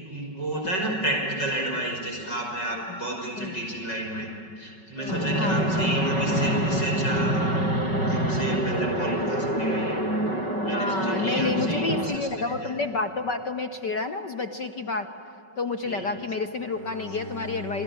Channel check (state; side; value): late; right; 5.3 ms